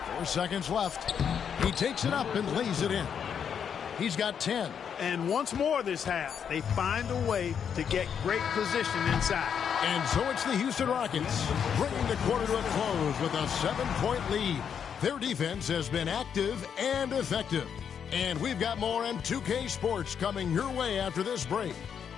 Four seconds left. He takes it up and lays it in. He's got 10. And once more this half, they find a way to get great position inside. And so it's the Houston Rockets bringing the quarter to a close with a 7-point lead. Their defense has been active and effective. And we've got more on 2K Sports coming your way after this break.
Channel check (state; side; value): quieter; right; 7.7 dB